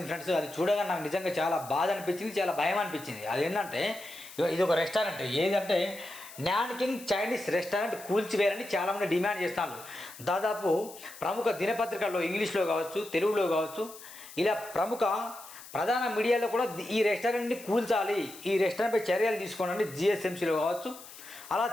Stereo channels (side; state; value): left; noise; hiss, 17 dB below the sound